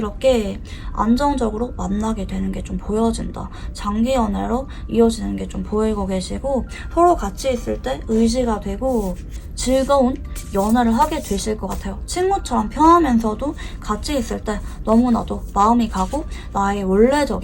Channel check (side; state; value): both; identical; correlation 1.00